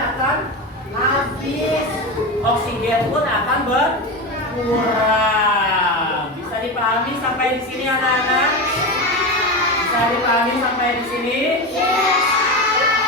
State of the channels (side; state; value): both; normal; correlation 0.20